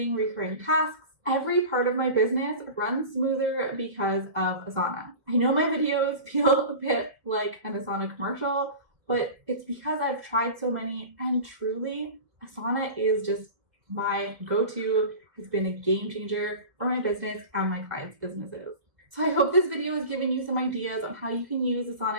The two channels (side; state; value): left; late; 1.5 ms